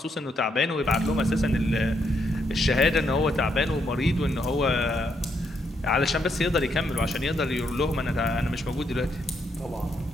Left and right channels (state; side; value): normal; both; correlation 0.76